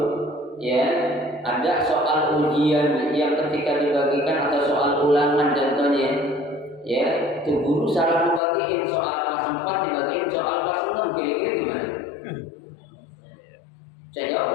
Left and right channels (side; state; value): right; drops out; at 8.4 s